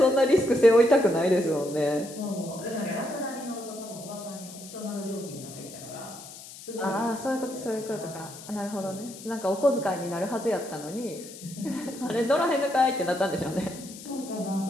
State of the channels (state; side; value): noise; left; hiss, 15 dB below the sound